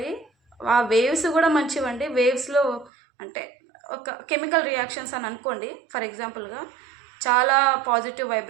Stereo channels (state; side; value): drops out; left; at 2.9 s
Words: ఆ వేవ్స్ కూడా మంచివండి. వేవ్స్లో అంటే ఒక కెమికల్ రియాక్షన్స్ అని అనుకోండి ఫర్ ఎగ్జాంపుల్గా, చాలా పాజిటివ్